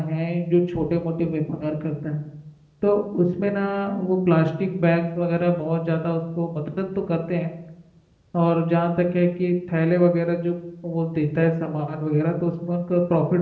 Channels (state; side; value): identical; both; correlation 1.00